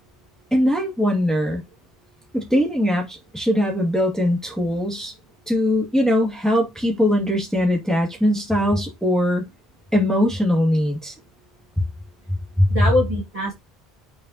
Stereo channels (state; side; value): normal; both; correlation 0.80